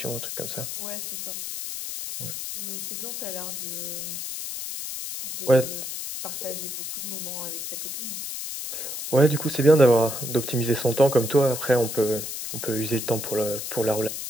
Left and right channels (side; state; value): left; noise; hiss, 6 dB below the sound